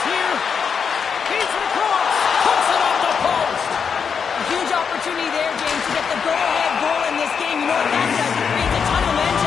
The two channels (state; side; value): quieter; right; 6.4 dB